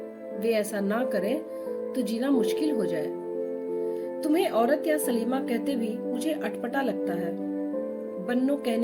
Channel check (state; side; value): identical; both; correlation 1.00